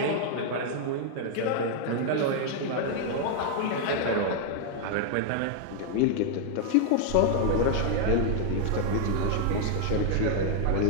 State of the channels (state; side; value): different; both; correlation 0.00